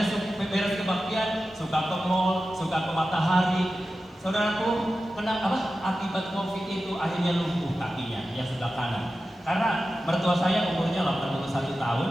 beres kebaktian suka ke mall, suka ke matahari. Saudaraku, kena apa? Akibat Covid itu akhirnya lumpuh kakinya yang sebelah kanan. Karena mertua saya umurnya 81 tahun,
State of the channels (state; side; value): normal; both; correlation 0.93